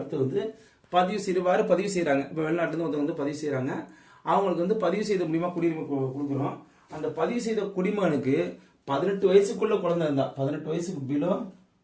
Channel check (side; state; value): both; identical; correlation 1.00